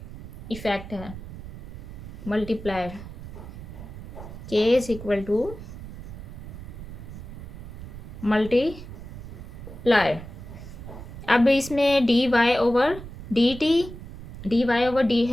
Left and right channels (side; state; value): right; noise; rumble, 12 dB below the sound